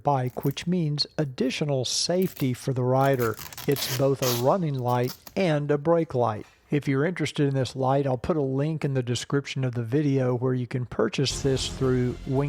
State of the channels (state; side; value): identical; both; correlation 1.00